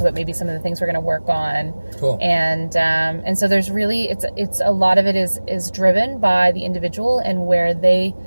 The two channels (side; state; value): both; inverted; correlation -1.00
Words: maybe some of the things we're going to work on. Cool. And so there's really, it's a lot of it is driven by the individual and where they